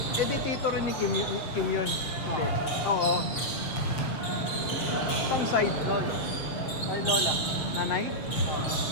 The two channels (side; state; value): right; late; 7.4 ms